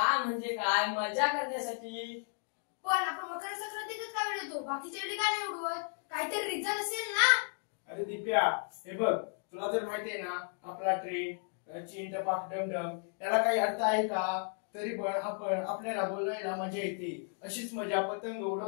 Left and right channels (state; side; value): silent; right; 55 dB below the other